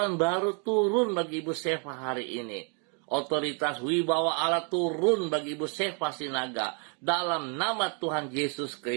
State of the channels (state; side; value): quieter; left; 38.4 dB